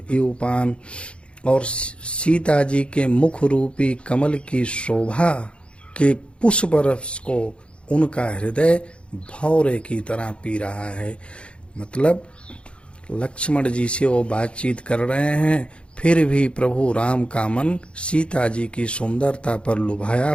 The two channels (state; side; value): late; right; 0.058 ms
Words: इवपान, और सीता जी के मुख रूपी कमल की शोभा के पुष्प रस को उनका हृदय भौरे की तरह पी रहा है। मतलब लक्ष्मण जी से वो बातचीत कर रहे हैं, फिर भी प्रभु राम का मन सीता जी की सुंदरता पर लुभाया